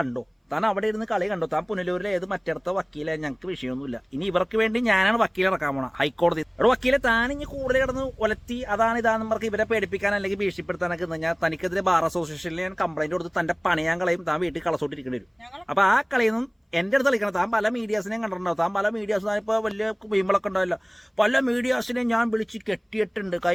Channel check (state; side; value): identical; both; correlation 1.00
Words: താൻ അവിടെ ഇരുന്ന് കളി കണ്ടോ? താൻ പുനലൂരിലെ ഏത് മറ്റടുത്ത വക്കീലെ, ഞങ്ങൾക്ക് വിഷയമൊന്നുമില്ല. ഇനി ഇവർക്ക് വേണ്ടി ഞാനാണ് വക്കീലെ ഇറക്കാൻ പോണ ഹൈക്കോടതി. അവിടെ വക്കീലെ താൻ ഇനി കൂടുതൽ കിടന്ന് ഒലത്തി അതാണ് ഇതാണെന്ന് പറഞ്ഞ് ഇവരെ പേടിപ്പിക്കാൻ അല്ലെങ്കിൽ ഭീഷണിപ്പെടുത്താനൊക്കെ ഞാൻ തനിക്കെതിരെ ബാർ അസോസിയേഷനിൽ ഞാൻ കംപ്ലൈന്റ് കൊടുത്ത് തന്റെ പണിയാൻ കളയും, താൻ വീട്ടിൽ കളസോട്ടിരിക്കേണ്ടി വരും. അപ്പൊ ആ കളിയൊന്നും എന്റെ അടുത്ത് കളിക്കണം. താൻ പല മീഡിയാസിനെയും കണ്ടിട്ടുണ്ടാവും. താൻ പല മീഡിയാസ് താനിപ്പോൾ വലിയ വീമ്പളൊക്കെ ഉണ്ടാവില്ല. പല മീഡിയാസിനെയും ഞാൻ വിളിച്ച് കെട്ടിയിട്ടുണ്ട്,